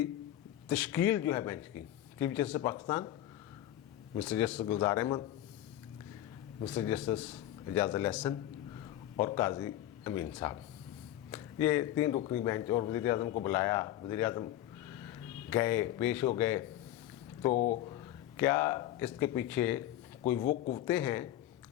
तश्कील जो है बेंच की, chief justice Pakistan mister justice Gulzar Ahmed, mister justice Ejaz ul Ahsan और काजी अमीन साहब, ये 3 रुकनी बेंच। और वज़ीर आज़म को बुलाया, वज़ीर आज़म गए, पेश हो गए। तो क्या इसके पीछे कोई वो कुव्वतें हैं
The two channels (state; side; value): quieter; right; 13.1 dB